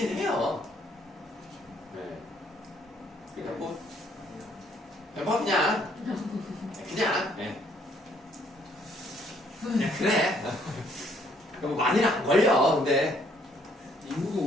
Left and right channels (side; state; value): both; normal; correlation 0.66